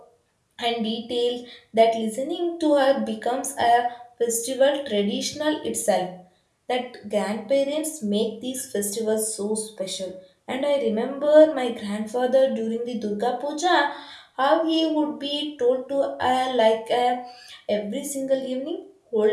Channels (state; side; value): identical; both; correlation 1.00